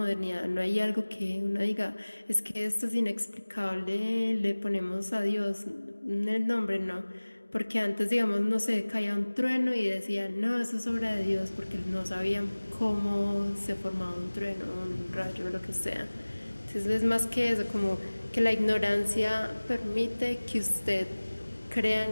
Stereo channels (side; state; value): both; inverted; correlation -1.00